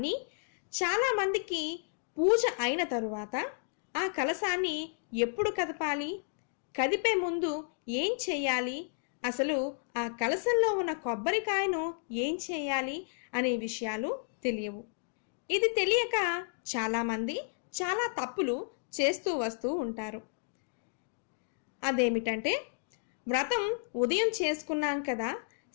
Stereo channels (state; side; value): silent; right; digital silence